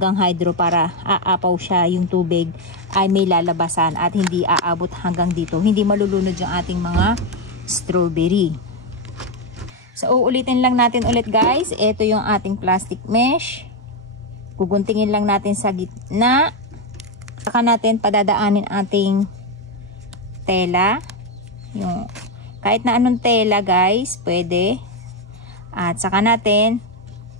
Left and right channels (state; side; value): normal; both; correlation 0.05